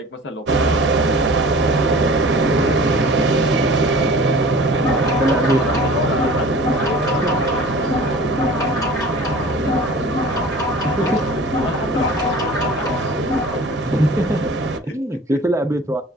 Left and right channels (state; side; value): normal; both; correlation 0.43